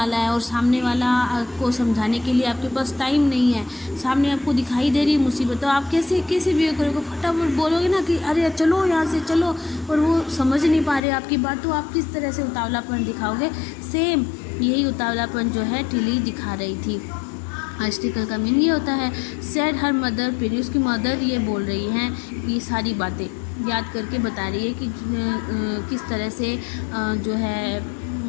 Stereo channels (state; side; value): drops out; right; at 11.0 s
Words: है और सामने वाला को समझाने के लिए आपके पास टाइम नहीं है, सामने आपको दिखाई दे रही है मुसीबत, तो आप कैसे भी करोगे, फटाफट बोलोगे ना कि अरे चलो यहाँ से चलो, और वो समझ नहीं पा रहे आपकी बात, तो आप किस तरह से उतावलापन दिखाओगे। सेम यही उतावलापन जो है टिली दिखा रही थी। हाइस्टिकल का मीनिंग ये होता है। सेड हर मदर, फिर उसकी मदर ये बोल रही हैं, ये सारी बातें याद करके बता रही है कि किस तरह से जो है